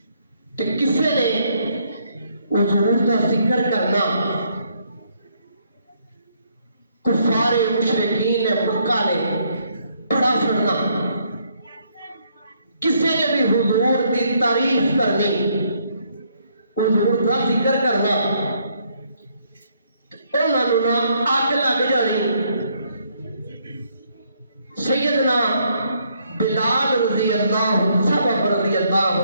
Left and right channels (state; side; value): inverted; both; correlation -0.71